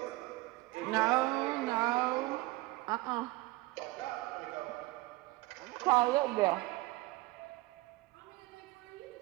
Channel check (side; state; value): left; quieter; 20.7 dB